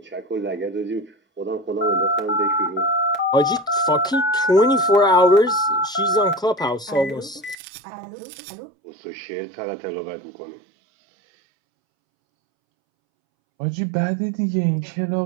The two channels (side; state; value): left; drops out; at 7.6 s